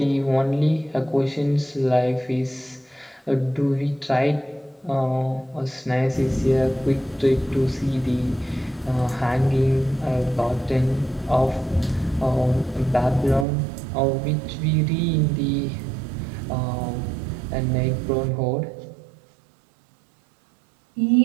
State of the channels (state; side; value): drops out; left; at 13.5 s